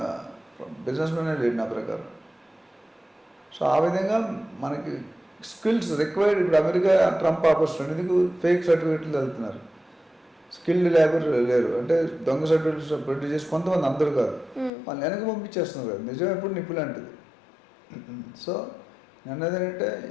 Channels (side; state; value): right; drops out; at 14.7 s